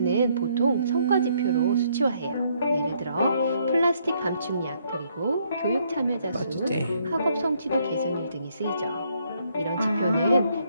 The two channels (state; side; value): inverted; both; correlation -0.70